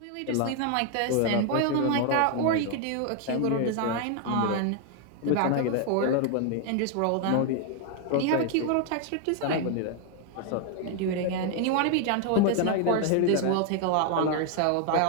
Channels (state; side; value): different; both; correlation 0.00